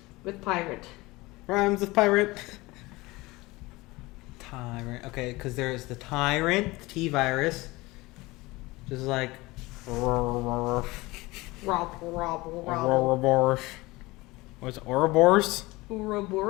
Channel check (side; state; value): right; quieter; 21.6 dB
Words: with pirate. Rhymes with pirate. Tyrant. Okay, because there's the tyrant, the T-virus. Just like... Rob. Ouroboros. What's it? Ouroboros?